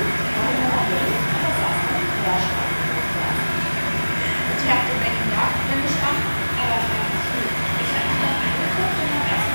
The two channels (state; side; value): inverted; both; correlation -1.00